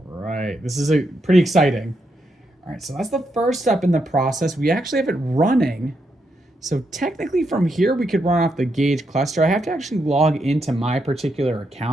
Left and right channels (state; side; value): normal; both; correlation 0.81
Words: right, this is pretty exciting. All right, so that's the first step in the process. We actually have it running. So technically from here, we could run off the gauge cluster. I have to actually log into my particular